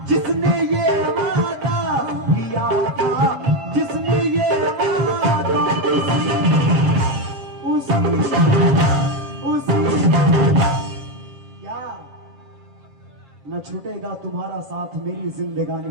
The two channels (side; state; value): left; late; 7.4 ms